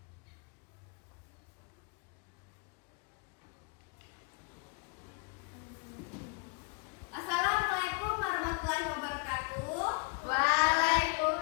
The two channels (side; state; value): right; quieter; 33.5 dB